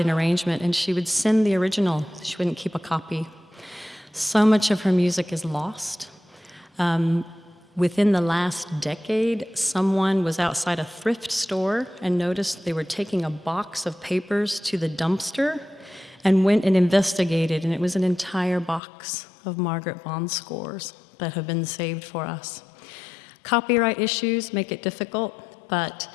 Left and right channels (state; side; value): drops out; right; at 18.8 s